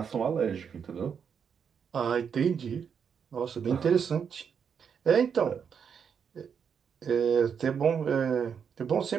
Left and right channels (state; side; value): quieter; left; 7.1 dB